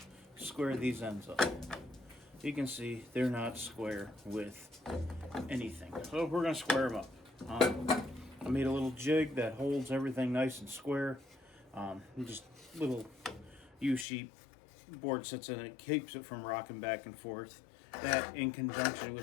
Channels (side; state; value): right; drops out; at 14.1 s